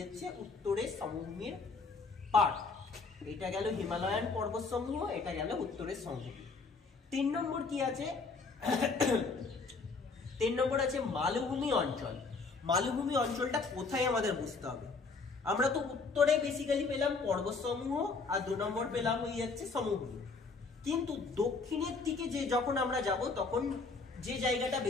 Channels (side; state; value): right; quieter; 4.3 dB